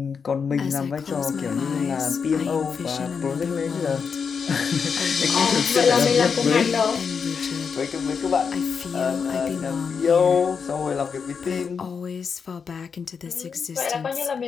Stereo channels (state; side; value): quieter; right; 6.0 dB